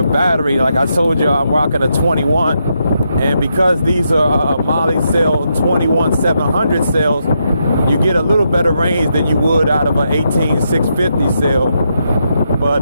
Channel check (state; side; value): inverted; both; correlation -0.81